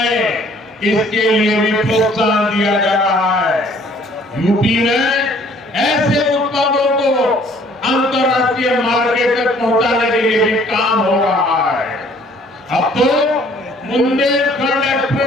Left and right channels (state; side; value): normal; both; correlation 0.58